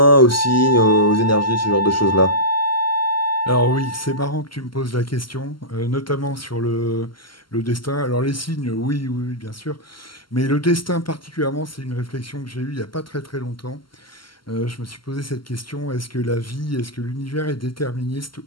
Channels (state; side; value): late; right; 0.72 ms